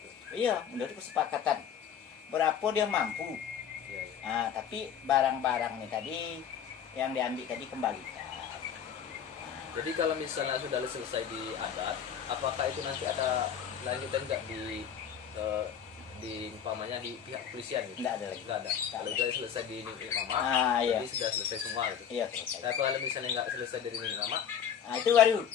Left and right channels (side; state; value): right; quieter; 8.4 dB